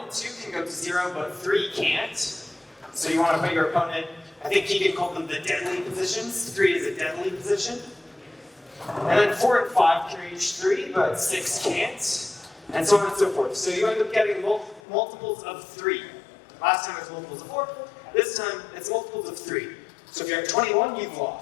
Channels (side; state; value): right; drops out; at 14.8 s